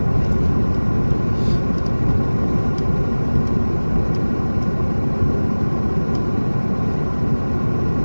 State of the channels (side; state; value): both; inverted; correlation -1.00